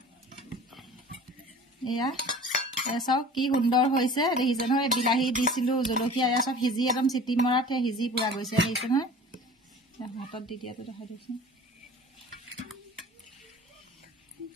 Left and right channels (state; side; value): normal; both; correlation 0.42